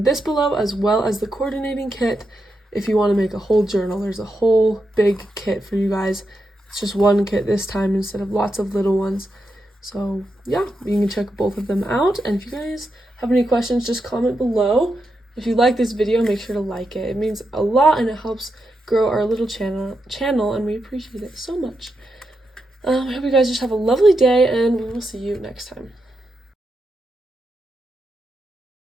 this below as well as the coordinating kit. If you want to make a whole journal, there's a whole big kit for you guys. It's just one kit this time instead of lots of little ones. So yeah, you can check both of them out. And if you guys have any questions, just comment below. If you like this video, make sure to like it. It means a lot and it helps grow our little channel and we appreciate it so much. I hope you guys just have a lovely day and we will see you next time.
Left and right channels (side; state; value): both; normal; correlation 0.85